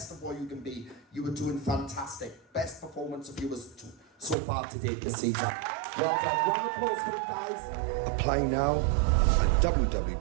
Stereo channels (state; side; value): drops out; left; at 4.4 s